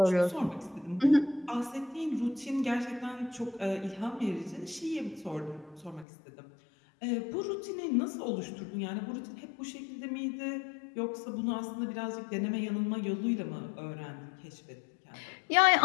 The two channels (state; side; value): drops out; right; at 6.1 s